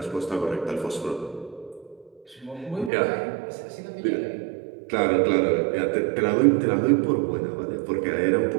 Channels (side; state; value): left; drops out; at 2.9 s